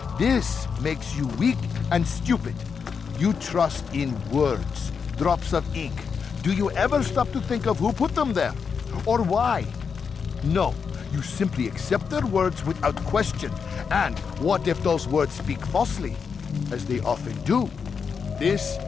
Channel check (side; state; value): right; quieter; 6.0 dB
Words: This makes you weak and stupid. You trust in words, drops of ink. Do you ever stop to think of who put them there? Or why? No, you simply accept their words without question. And what if those words speak falsely? As they often do. This